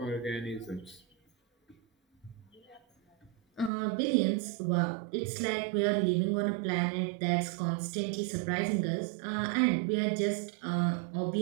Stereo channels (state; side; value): drops out; left; at 3.7 s